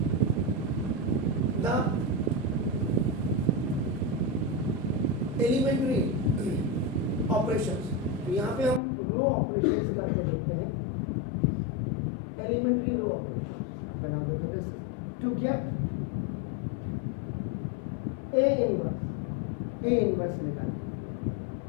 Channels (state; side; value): drops out; right; at 8.8 s